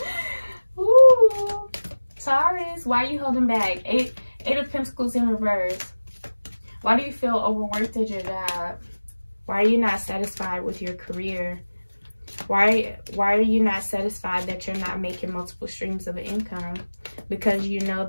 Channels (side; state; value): both; inverted; correlation -1.00